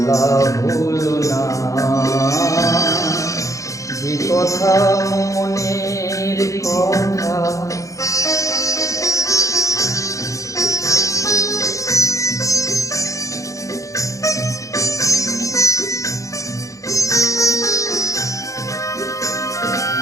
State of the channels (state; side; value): late; right; 0.16 ms